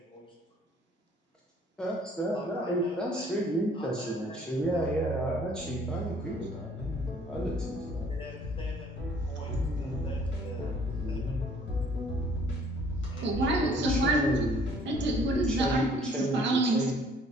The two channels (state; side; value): normal; both; correlation 0.58